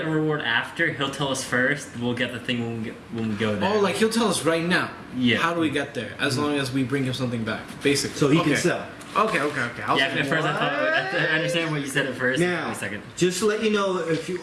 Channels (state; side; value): identical; both; correlation 1.00